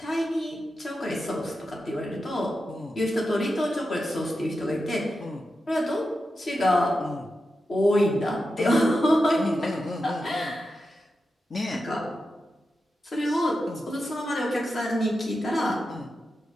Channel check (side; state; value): both; normal; correlation 0.90